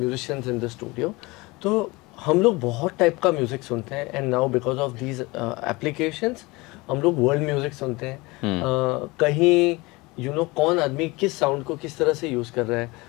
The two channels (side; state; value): right; quieter; 23.4 dB